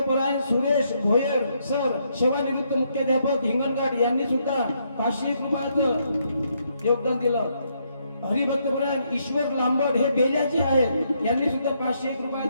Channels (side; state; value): both; inverted; correlation -0.75